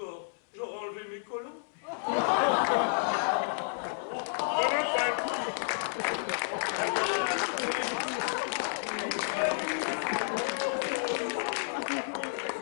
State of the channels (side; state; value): right; silent; 57 dB below the other